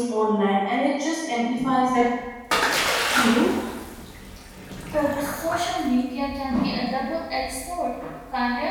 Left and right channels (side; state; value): both; identical; correlation 1.00